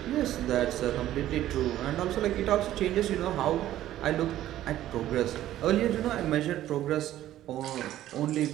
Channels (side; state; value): left; quieter; 13.2 dB